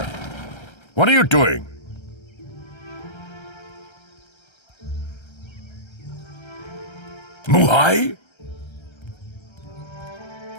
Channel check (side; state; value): right; late; 1.3 ms